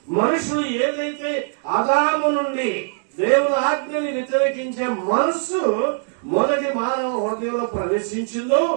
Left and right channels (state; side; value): silent; left; 65 dB below the other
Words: మనుషులు ఏదైతే ఆదాము నుండి దేవుని ఆజ్ఞని వ్యతిరేకించే మనసు మొదటి మానవ హృదయంలో ప్రవేశించిందో